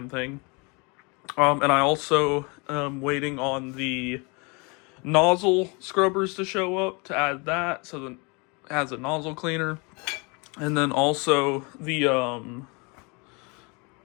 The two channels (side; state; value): right; quieter; 30.1 dB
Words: thing. And I also am waiting on the nozzle scrubbers to show up to add that, so that it has a nozzle cleaner. And then also the